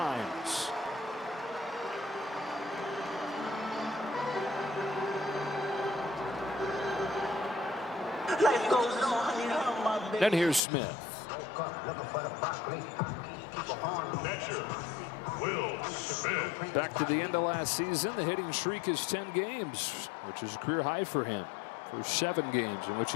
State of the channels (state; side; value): drops out; right; at 10.6 s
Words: Then here's Smith. Will Smith. Back to the end of last season, the hitting streak is 10 games, which is a career high for him. For 7 games in which